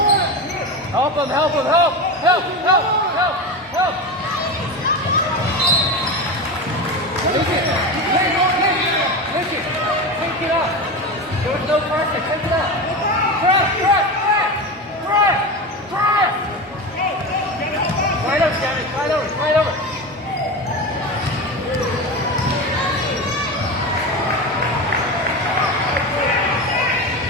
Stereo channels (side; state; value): both; normal; correlation 0.22